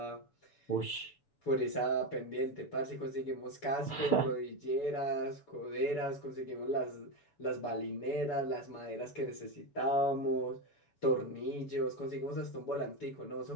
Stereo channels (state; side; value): late; right; 6.8 ms